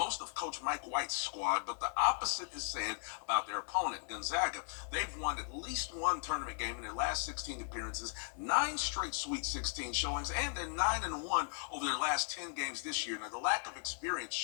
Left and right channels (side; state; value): right; silent; 53 dB below the other